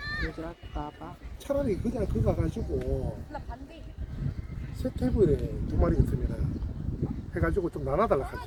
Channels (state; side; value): identical; both; correlation 1.00